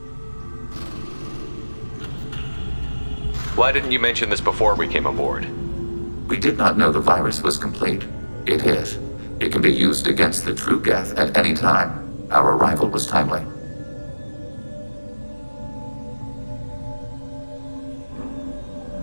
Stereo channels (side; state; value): both; inverted; correlation -1.00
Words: Why didn't you mention this before we came aboard? We did not know the virus was complete. It is. It can be used against the true geth at any time. Our arrival was timely.